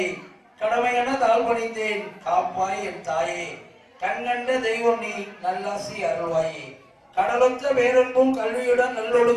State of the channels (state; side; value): identical; both; correlation 1.00